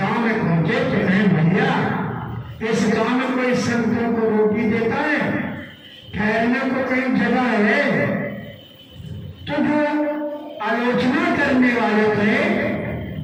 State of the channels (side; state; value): both; identical; correlation 1.00